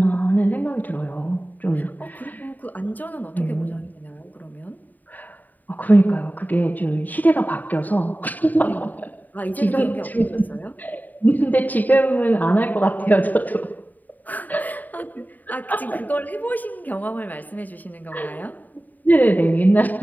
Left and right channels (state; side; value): late; right; 0.084 ms